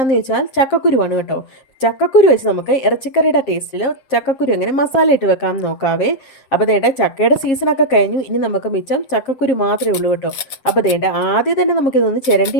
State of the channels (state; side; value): late; right; 7.5 ms